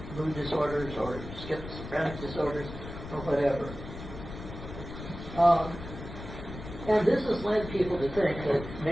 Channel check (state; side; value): noise; left; rumble, 11 dB below the sound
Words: mood disorders or schizophrenic disorders or whatever. And this has led people to think that